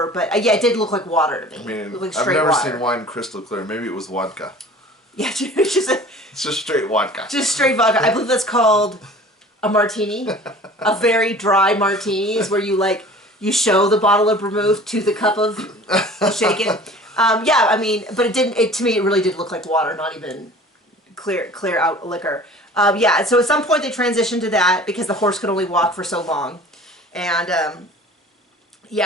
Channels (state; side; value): normal; both; correlation 0.44